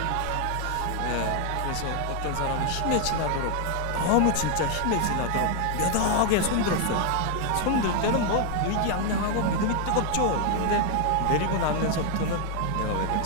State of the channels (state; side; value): different; both; correlation 0.00